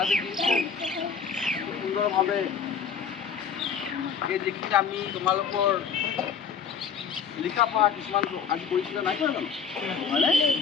আজি দিনটো সুন্দৰভাৱে এই যিখিনি আমি তোমালোকৰ লিখা পঢ়া কিছুমান আজি কৰিছিলে নাই কৰা জানো হয়নে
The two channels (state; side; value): quieter; right; 6.6 dB